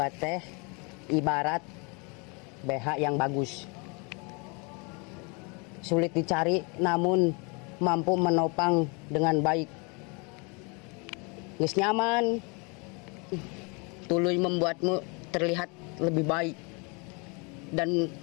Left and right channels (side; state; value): right; quieter; 31.4 dB